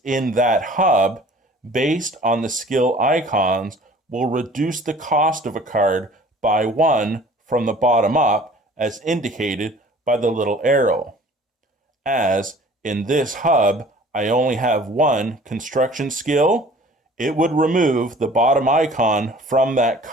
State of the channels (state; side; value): normal; both; correlation 0.49